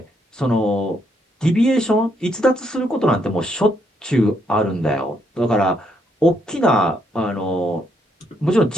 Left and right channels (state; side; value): normal; both; correlation 0.74